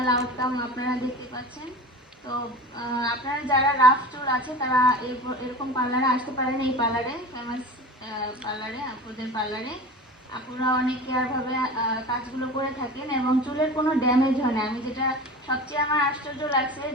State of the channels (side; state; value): both; normal; correlation 0.34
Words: আউটকাম আপনারা দেখতে পাচ্ছেন। তো আপনারা যারা রাফ চুল আছে তারা এরকম পার্লারে আসতে পারেন, এই পার্লারে ফেমাস পার্লারে, আপুদের পার্লারে। আপুরা অনেক কেয়ারভাবে কাজগুলো করে থাকেন এবং চুলের কোনো ড্যামেজ হয় না। আমি যেটা সবচেয়ে আমার আশ্চর্য লাগছে